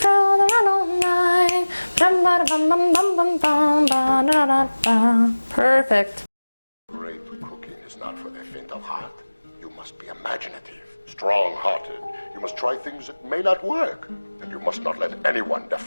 on the run all night. Perfect. Great cooking is not for the faint of heart. You must be imaginative, strong-hearted. You must try things that may not work. And you must not let anyone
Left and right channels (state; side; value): inverted; both; correlation -1.00